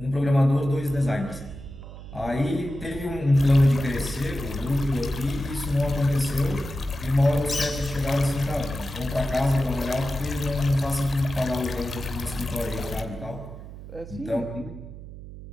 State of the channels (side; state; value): right; noise; hum, 13 dB below the sound